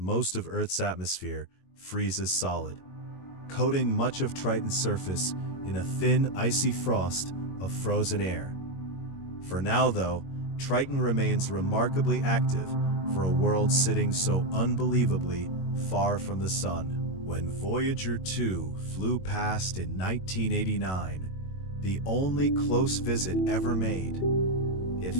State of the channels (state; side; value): late; right; 21 ms